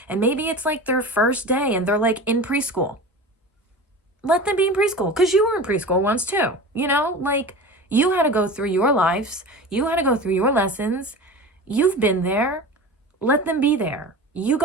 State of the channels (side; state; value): both; normal; correlation 0.33